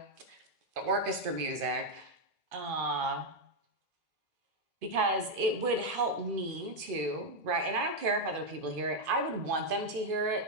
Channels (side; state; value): left; late; 2.5 ms